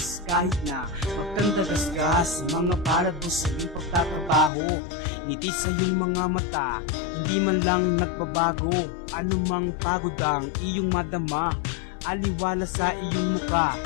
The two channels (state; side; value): drops out; right; at 4.5 s